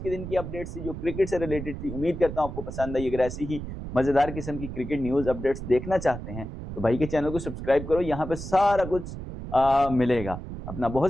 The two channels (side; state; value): right; noise; rumble, 9 dB below the sound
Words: के दिन की अपडेट्स थी जो क्रिकेट से रिलेटेड थी। उम्मीद करता हूं आपको पसंद आई। अगर ऐसी ही मजेदार किस्म की क्रिकेट न्यूज अपडेट्स देखना चाहते हैं तो भाई के चैनल को सब्सक्राइब करो, यहाँ पे सारा कुछ मिलेगा। अपना बहुत